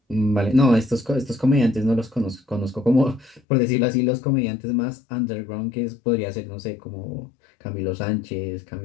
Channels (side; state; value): right; drops out; at 3.4 s